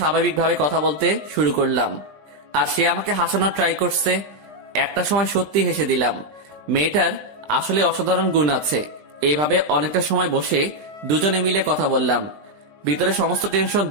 কথা বলতে শুরু করলাম। আর সে আমাকে হাসানোর ট্রাই করছে। একটা সময় সত্যি হেসে দিলাম। মেয়েটার আসলে অসাধারণ গুণ আছে। এইভাবে অনেকটা সময় বসে দুজনে মিলে কথা বললাম। ভিতরে সমস্ত টেনশন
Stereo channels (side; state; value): left; late; 20 ms